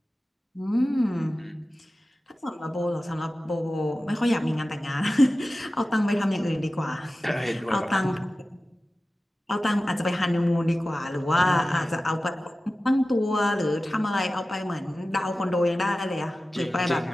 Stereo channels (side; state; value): both; normal; correlation 0.95